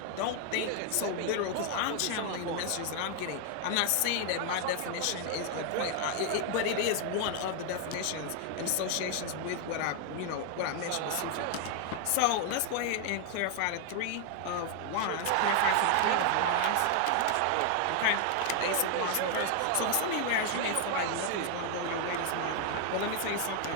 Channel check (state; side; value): different; both; correlation 0.00